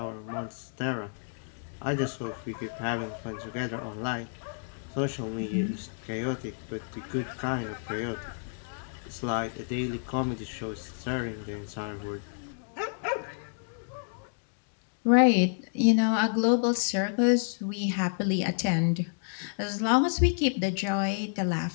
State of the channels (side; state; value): right; silent; digital silence